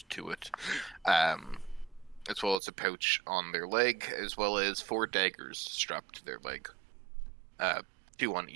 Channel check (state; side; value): drops out; left; at 2.6 s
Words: to it, as well as a pouch on their leg, as well as 4 daggers strapped to their leg, 2 on